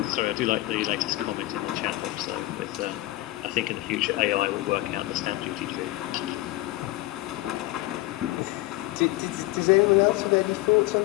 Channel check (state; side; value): quieter; right; 18.5 dB